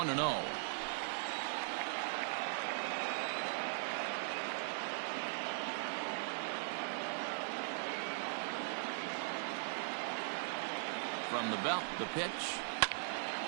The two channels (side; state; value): left; silent; digital silence